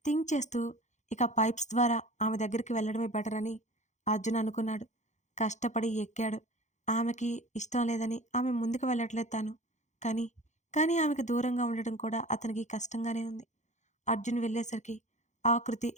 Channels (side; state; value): right; late; 0.34 ms